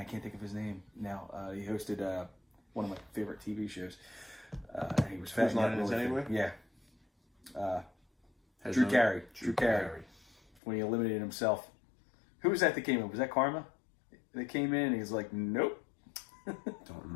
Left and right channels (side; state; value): right; drops out; at 10.6 s